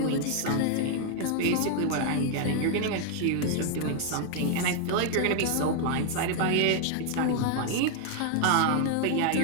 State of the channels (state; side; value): different; both; correlation 0.00